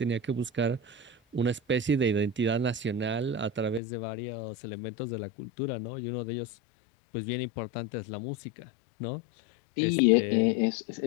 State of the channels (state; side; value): drops out; right; at 3.8 s